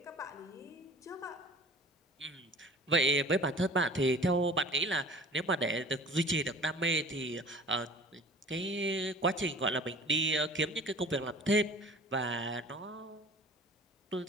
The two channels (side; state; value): both; normal; correlation 0.44